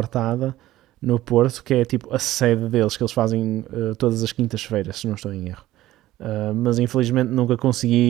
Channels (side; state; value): left; quieter; 15.2 dB